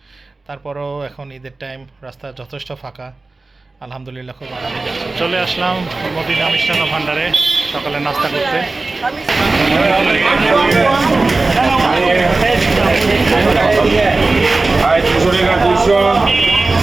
তারপরেও এখন ঈদের টাইম, রাস্তা যথেষ্ট ফাঁকা। আলহামদুলিল্লাহ খুব আরামে যাচ্ছে। চলে আসলাম মদিনা মিষ্টান্ন ভান্ডারে সকালে নাস্তা করতে। Hai, 200 টাকা 200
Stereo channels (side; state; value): left; quieter; 3.4 dB